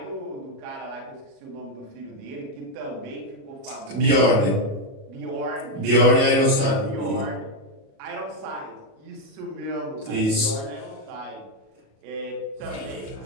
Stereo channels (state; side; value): late; left; 37 ms